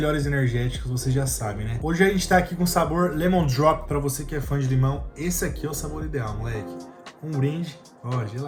energéticos, vocês já sabem, né? Hoje a gente tá aqui com o sabor Lemon Drop, pra você que é fã de limão. Esse aqui é o sabor ideal, moleque. Um brinde, ó,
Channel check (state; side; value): identical; both; correlation 1.00